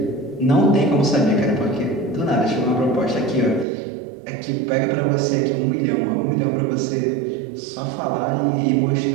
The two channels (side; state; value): left; drops out; at 3.7 s